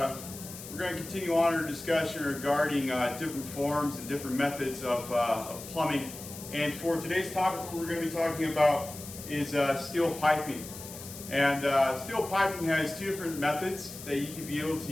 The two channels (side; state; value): left; noise; hiss, 13 dB below the sound